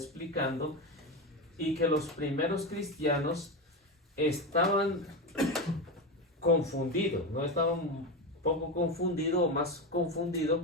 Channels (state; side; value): normal; both; correlation 0.17